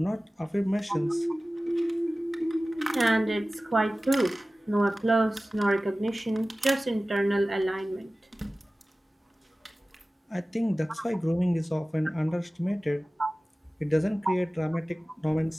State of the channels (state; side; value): normal; both; correlation 0.97